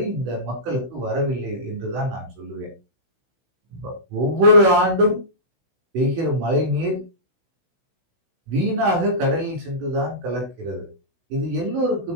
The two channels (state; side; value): late; left; 16 ms